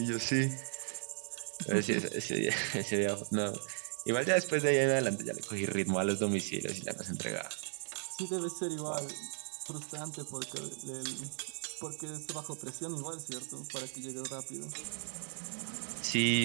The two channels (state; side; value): silent; left; digital silence